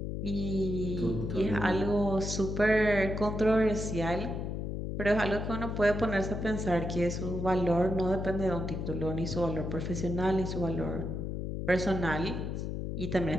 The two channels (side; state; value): left; noise; hum, 3 dB below the sound